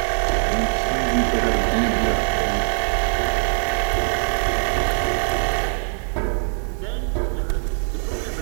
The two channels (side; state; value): left; silent; 55 dB below the other